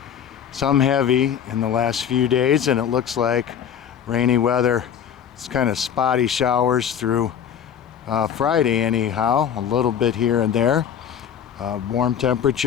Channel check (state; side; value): quieter; right; 8.6 dB